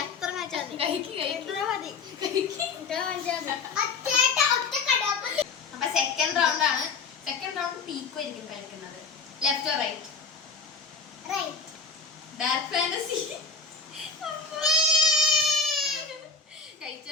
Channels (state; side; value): quieter; right; 4.7 dB